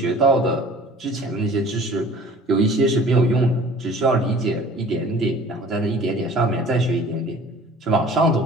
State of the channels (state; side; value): normal; both; correlation 0.47